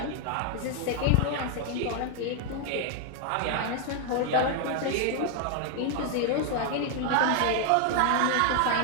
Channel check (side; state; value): both; different; correlation 0.00